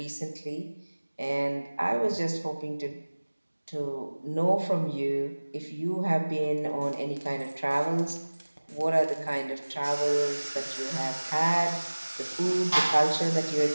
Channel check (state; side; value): inverted; both; correlation -1.00